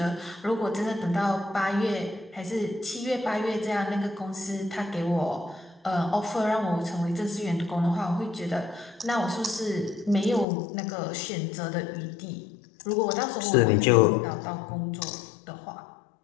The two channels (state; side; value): drops out; right; at 10.5 s